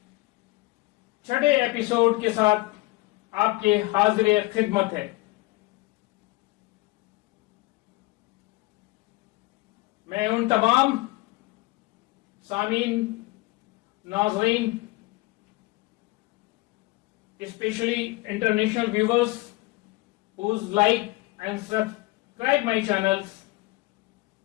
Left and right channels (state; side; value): quieter; right; 21.3 dB